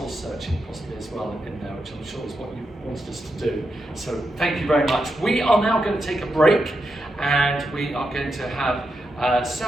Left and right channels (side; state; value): both; normal; correlation 0.85